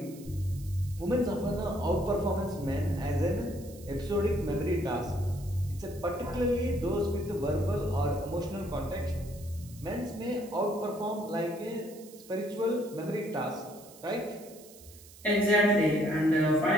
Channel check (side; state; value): right; noise; hiss, 21 dB below the sound